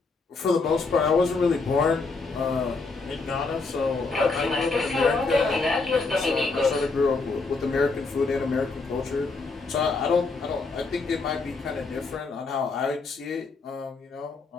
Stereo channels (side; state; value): right; quieter; 4.0 dB